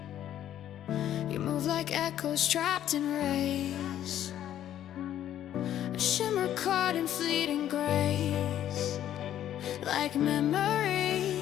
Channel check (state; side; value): quieter; right; 11.4 dB